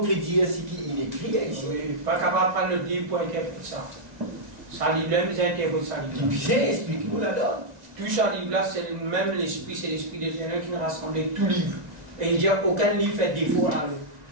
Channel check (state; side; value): late; left; 1.9 ms